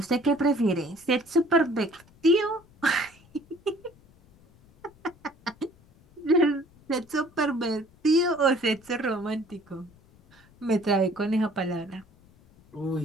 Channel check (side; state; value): left; noise; rumble, 28 dB below the sound